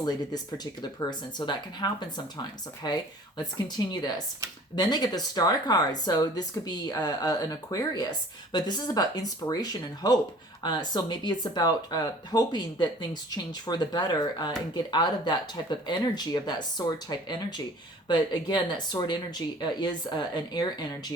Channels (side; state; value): both; normal; correlation 0.49